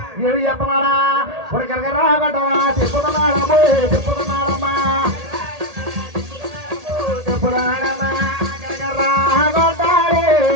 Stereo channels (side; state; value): left; late; 1.8 ms